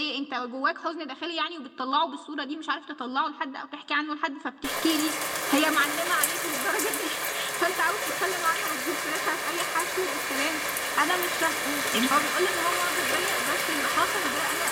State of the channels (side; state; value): both; identical; correlation 1.00